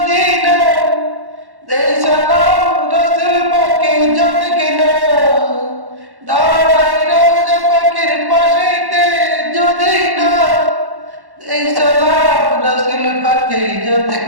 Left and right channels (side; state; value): left; late; 1.1 ms